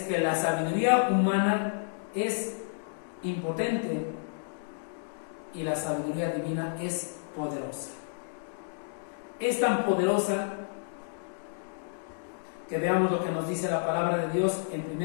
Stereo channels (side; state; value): right; silent; digital silence